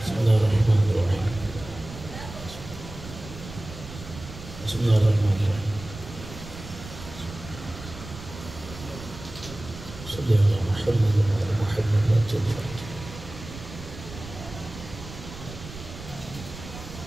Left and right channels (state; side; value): noise; right; rumble, 13 dB below the sound